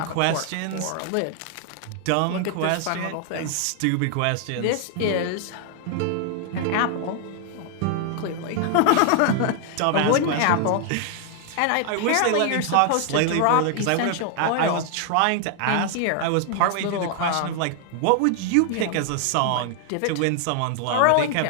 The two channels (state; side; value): different; both; correlation 0.00